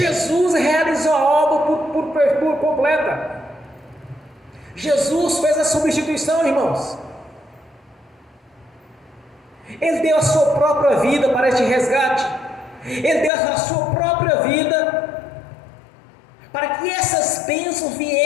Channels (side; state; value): right; drops out; at 13.3 s